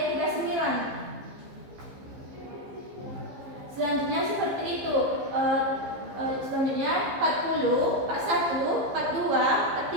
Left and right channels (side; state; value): left; late; 15 ms